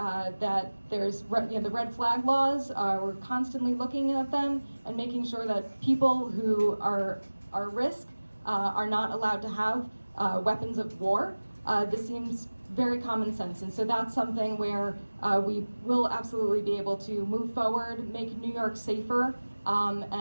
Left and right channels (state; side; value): inverted; both; correlation -1.00